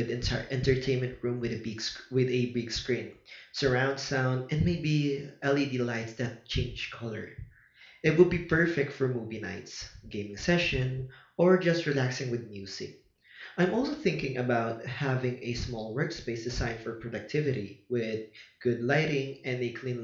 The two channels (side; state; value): both; identical; correlation 1.00